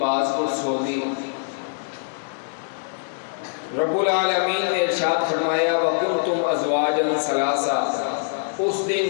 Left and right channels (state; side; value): silent; right; digital silence